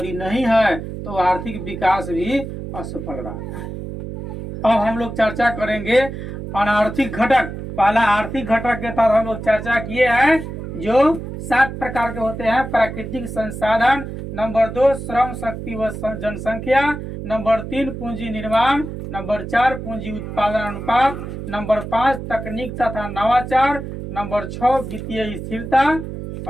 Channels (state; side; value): noise; right; hum, 8 dB below the sound